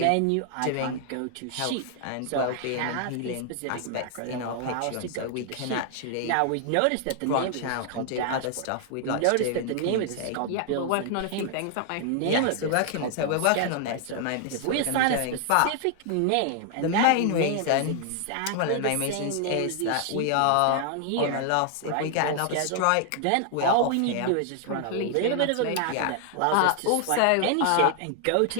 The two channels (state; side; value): different; both; correlation 0.00